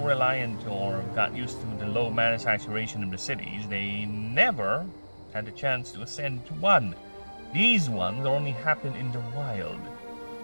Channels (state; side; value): inverted; both; correlation -1.00